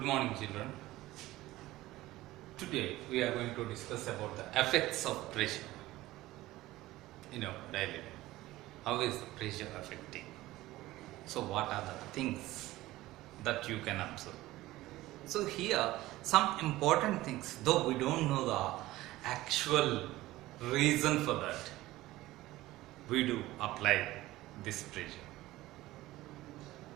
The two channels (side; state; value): left; quieter; 17.3 dB